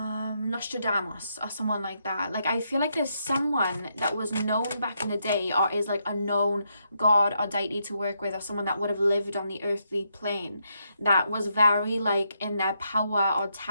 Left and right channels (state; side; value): inverted; both; correlation -0.79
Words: or someone like that. Like I feel like there's someone that was known back in the day, or is like a known god or deity to work with, or someone that would have lived on the earthly plane, that was very like in their power or